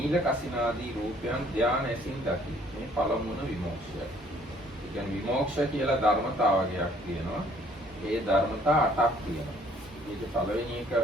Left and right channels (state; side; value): normal; both; correlation 0.60